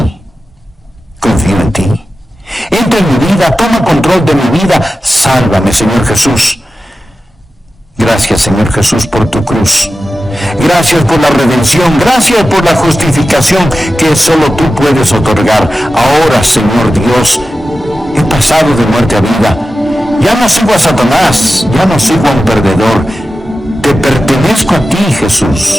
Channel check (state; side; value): normal; both; correlation 0.93